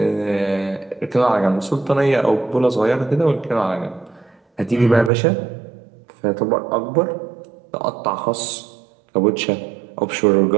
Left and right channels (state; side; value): drops out; left; at 5.1 s